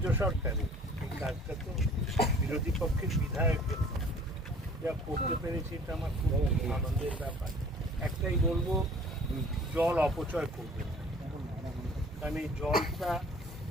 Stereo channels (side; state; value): both; normal; correlation 0.50